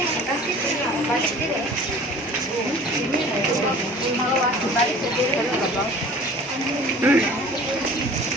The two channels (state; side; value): normal; both; correlation 0.45